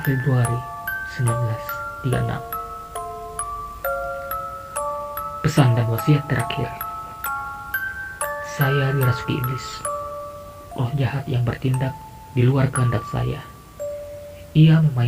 Februari 1936. Pesan dan wasiat terakhir. Saya dirasuki iblis, roh jahat yang bertindak di luar kehendak saya. Ia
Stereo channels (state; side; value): identical; both; correlation 1.00